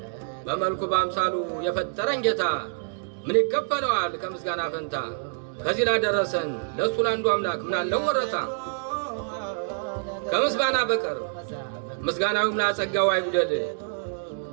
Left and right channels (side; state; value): left; silent; digital silence